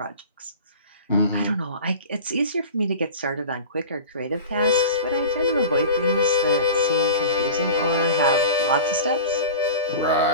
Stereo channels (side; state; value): both; inverted; correlation -0.35